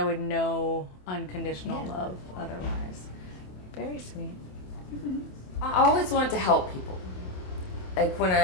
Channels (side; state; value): right; late; 27 ms